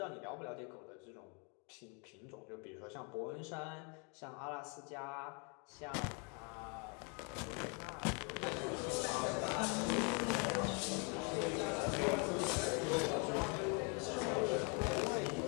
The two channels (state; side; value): quieter; right; 35.6 dB